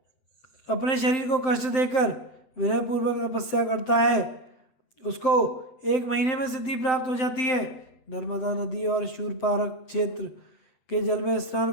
अपने शरीर को कष्ट देकर विनयपूर्वक तपस्या करता है, उसको 1 महीने में सिद्धि प्राप्त हो जाती है। नर्मदा नदी और शूरपारक क्षेत्र के जल में स्नान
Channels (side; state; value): right; late; 7.7 ms